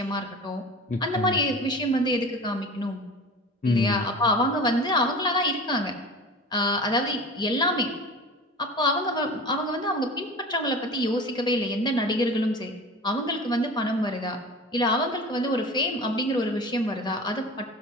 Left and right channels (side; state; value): both; normal; correlation 0.36